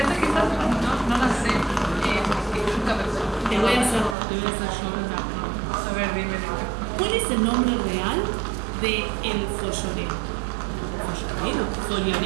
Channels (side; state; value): left; drops out; at 4.2 s